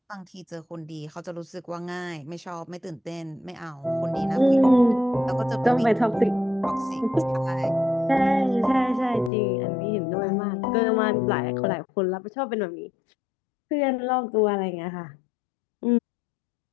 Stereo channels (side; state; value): right; drops out; at 9.3 s